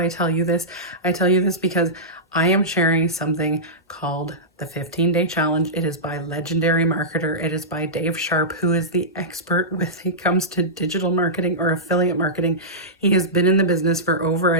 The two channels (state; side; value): normal; both; correlation -0.15